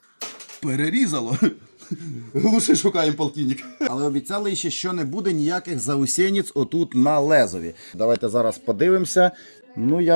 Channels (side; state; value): both; inverted; correlation -1.00